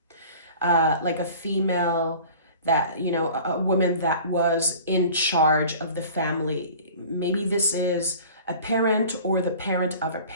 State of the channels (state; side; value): inverted; both; correlation -0.43